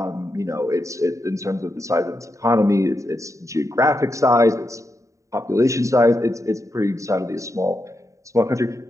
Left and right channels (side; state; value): left; late; 0.15 ms